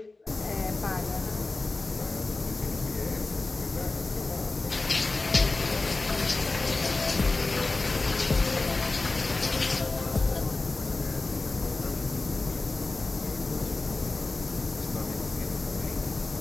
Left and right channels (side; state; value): right; quieter; 3.4 dB